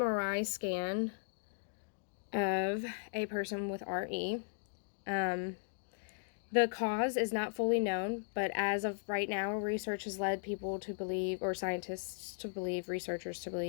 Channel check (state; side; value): silent; right; digital silence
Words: scan of a person with RE. The cause is not fully known, but as of right now, research has led people to believe, or scientists to believe, researchers to